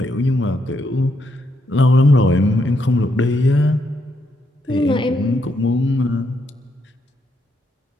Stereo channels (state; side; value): normal; both; correlation 0.78